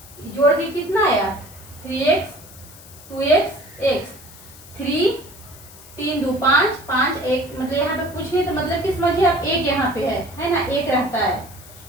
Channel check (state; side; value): noise; left; hiss, 20 dB below the sound